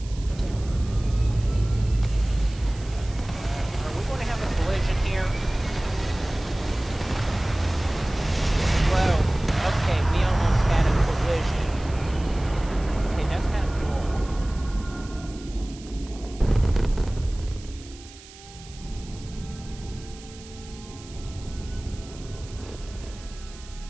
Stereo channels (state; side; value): noise; right; hiss, 20 dB below the sound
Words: we going to have a collision here? Whoa. Okay, we almost had a collision. Okay, that's kind of cool.